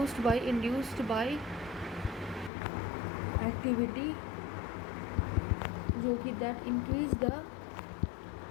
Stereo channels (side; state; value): right; drops out; at 2.5 s